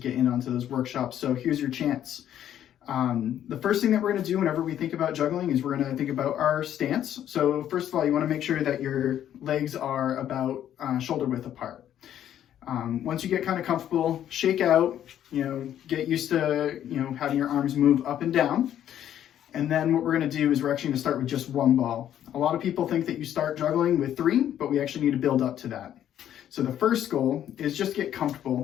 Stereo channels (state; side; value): quieter; right; 10.8 dB